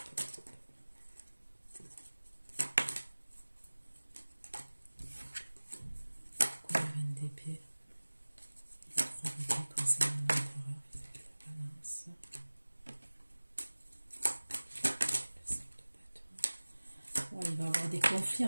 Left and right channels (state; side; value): inverted; both; correlation -1.00